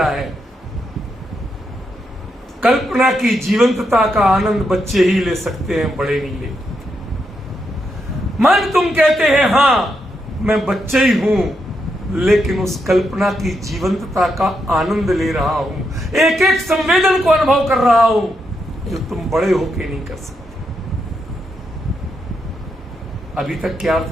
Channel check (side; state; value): both; normal; correlation 0.81